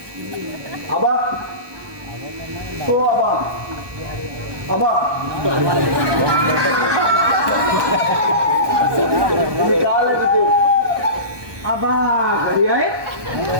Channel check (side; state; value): left; late; 1.2 ms